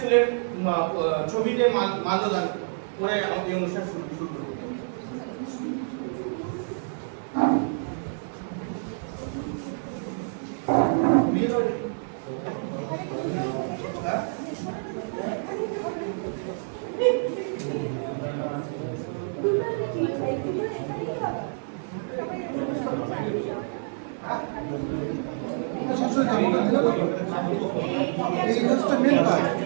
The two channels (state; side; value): silent; left; digital silence